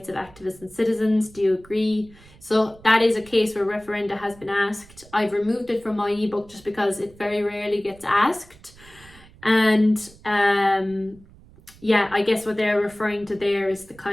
of activists and citizens. Do you agree? So that is a case where referenda has been asked. I've removed it from my ebook just because it very rarely gets asked. And yeah, I guess what they're referring to there is the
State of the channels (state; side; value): noise; right; rumble, 24 dB below the sound